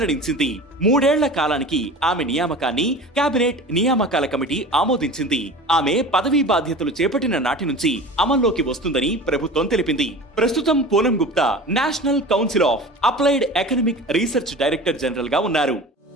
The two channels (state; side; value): normal; both; correlation 0.36